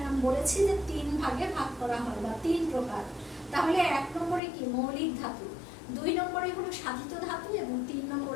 আমি বলেছি যে 3 ভাগে ভাগ করা হয় বা 3 প্রকার। তাহলে 1 নম্বরে কি? মৌলিক ধাতু, 2 নম্বরে হলো সাধিত ধাতু এবং 3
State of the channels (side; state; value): right; drops out; at 4.4 s